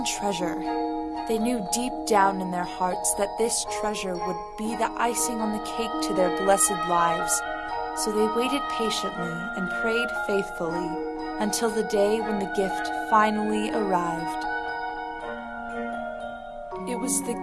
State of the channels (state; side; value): noise; left; rumble, 29 dB below the sound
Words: treasure. They knew deep down in their hearts that this treasure would be the icing on the cake to their blessed lives, so they waited patiently and prayed faithfully until the day when the gift finally arrived. It was